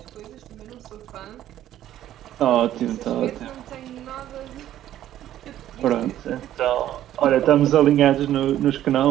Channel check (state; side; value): quieter; left; 12.3 dB